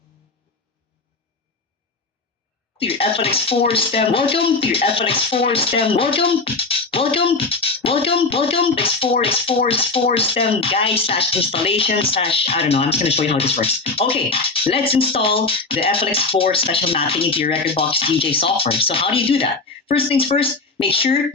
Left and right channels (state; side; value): quieter; right; 3.8 dB